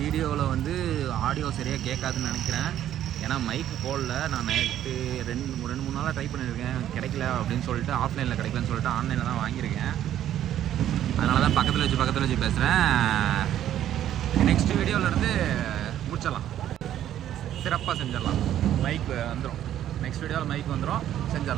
வந்து ஆடியோ சரியாக கேட்காதுன்னு நினைக்கிறேன். ஏன்னா மைக்கு போடல. நான் நேற்று 2-3 நாளாக ட்ரை பண்ணியிருக்கேன், கிடைக்கல அப்படின்னு சொல்லிட்டு, ஆஃப்லைனில் கிடைக்கலன்னு சொல்லிட்டு ஆன்லைனில் தான் வாங்கியிருக்கேன். அதனால தான் பக்கத்தில் வச்சு பேசுகிறேன். நெக்ஸ்ட் வீடியோவிலேருந்து முடிச்சிடலாம், சிறப்பாக செஞ்சிடலாம். மைக் வந்துடும், நெக்ஸ்ட் வீடியோவில் மைக் வந்துடும்,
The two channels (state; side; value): quieter; left; 11.5 dB